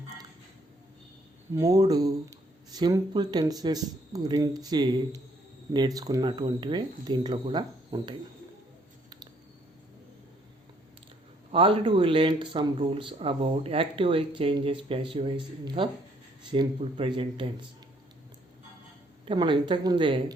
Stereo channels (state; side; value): normal; both; correlation 0.66